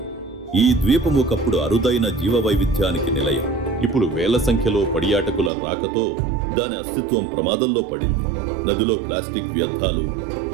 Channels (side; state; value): left; drops out; at 5.5 s